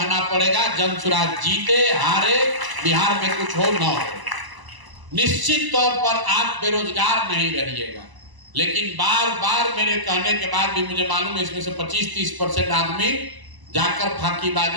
पड़ेगा। जन सुराज जीते हारे, बिहार में कुछ हो न हो, निश्चित तौर पर आप बेरोजगार नहीं रहिएगा। लेकिन बार बार मेरे कहने के बाद भी मुझे मालूम है इसमें से 25-30% आदमी जाकर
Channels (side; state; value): left; late; 1.0 ms